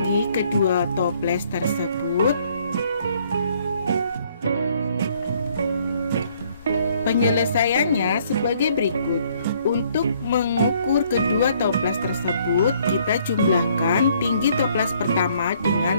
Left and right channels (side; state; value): both; inverted; correlation -0.65